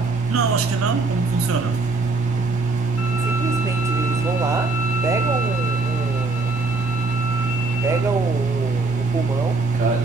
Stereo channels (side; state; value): left; quieter; 3.7 dB